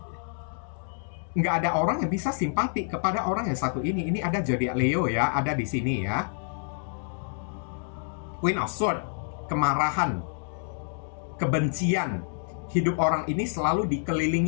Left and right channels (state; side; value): silent; right; digital silence